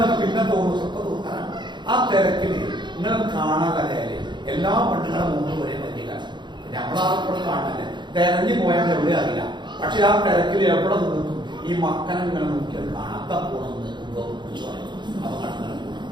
പിന്നെ തോന്നുന്നു, സ്വപ്പം തോന്നാനാണ്. ആ തിരക്കില് ഇങ്ങനെ കാണാൻ കലയാലേ എല്ലാ പെണ്ണുങ്ങളുടെ മുമ്പ് ഒരേ പറ്റിയാണ്. നമ്മളാർക്കും കാണാനല്ലേ, തെരഞ്ഞു പോയാൽ എവിടെ അറിയില്ല. പക്ഷെ ആ തിരക്കിൽ എവിടെ നിന്നും ഈ മക്കനെ ഇങ്ങനെ നോക്കിയാൽ കാണാത്ത പോണെന്ന് അപകടങ്ങളെ പോകണം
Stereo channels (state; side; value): late; left; 0.22 ms